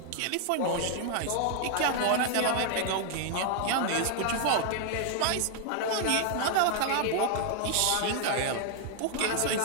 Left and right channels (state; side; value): different; both; correlation 0.00